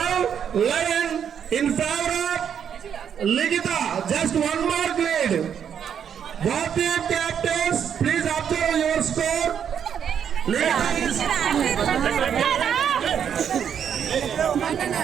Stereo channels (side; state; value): left; quieter; 8.3 dB